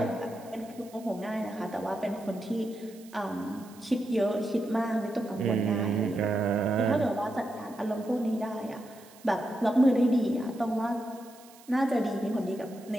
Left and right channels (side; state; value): right; noise; hiss, 23 dB below the sound